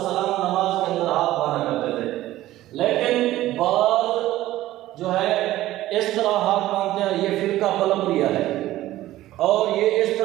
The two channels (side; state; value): left; quieter; 15.2 dB